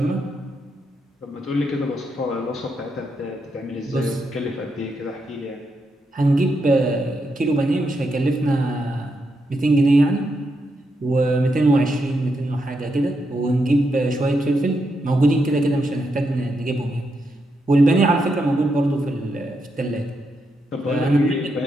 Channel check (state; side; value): normal; both; correlation 0.82